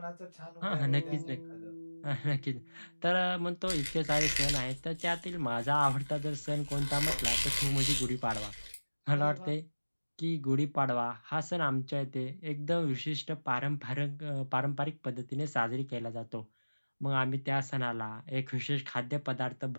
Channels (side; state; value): both; inverted; correlation -1.00